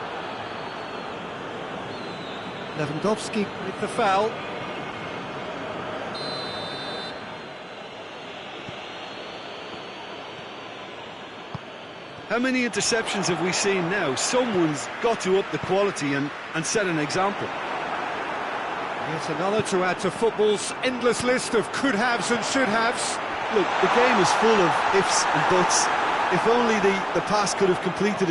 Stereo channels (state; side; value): identical; both; correlation 1.00